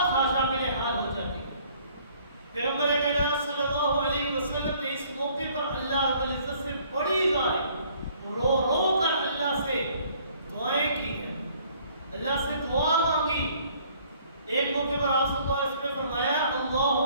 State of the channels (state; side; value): inverted; both; correlation -0.59